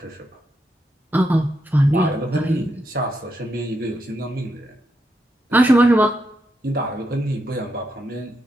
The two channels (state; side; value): normal; both; correlation 0.82